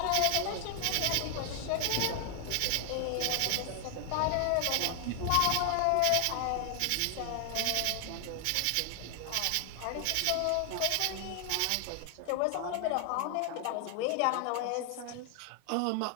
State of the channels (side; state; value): both; different; correlation 0.00